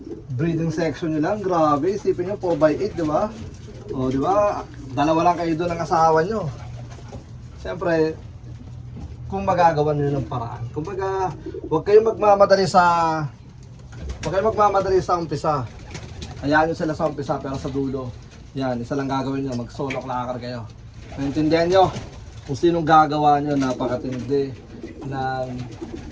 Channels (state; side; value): identical; both; correlation 1.00